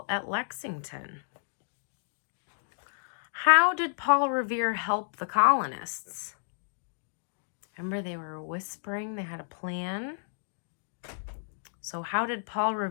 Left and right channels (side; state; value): right; silent; digital silence